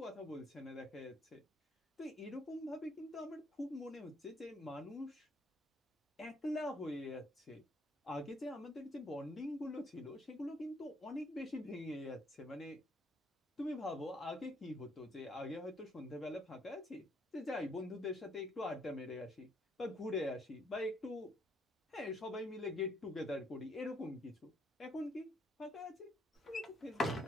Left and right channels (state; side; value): normal; both; correlation 0.69